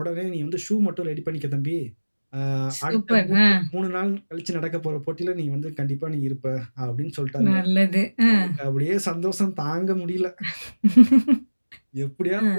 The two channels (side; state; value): both; inverted; correlation -1.00